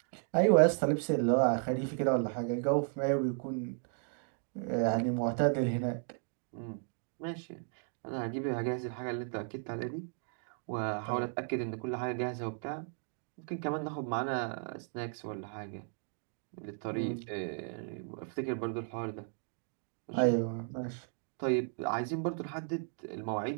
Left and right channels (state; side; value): silent; left; 54 dB below the other